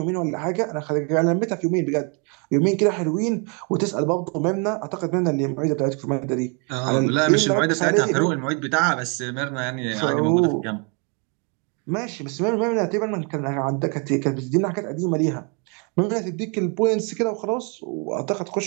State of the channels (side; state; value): left; quieter; 35.7 dB